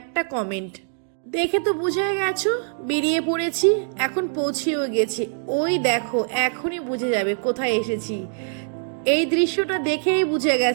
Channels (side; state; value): left; silent; digital silence